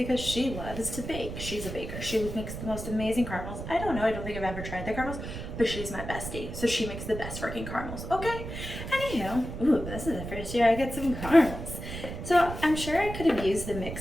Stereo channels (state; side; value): noise; right; rumble, 8 dB below the sound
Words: she loves to bake. She's a baker. She makes the most amazing caramels. I don't know. I don't think I've ever tried the caramels, but she's my bestie. So she makes the best freaking caramels. Okay? Anyhow, ooh, this is the first year I get some caramels. So I'm sure I could have used the